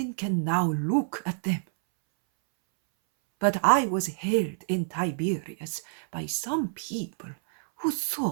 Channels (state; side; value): silent; left; 60 dB below the other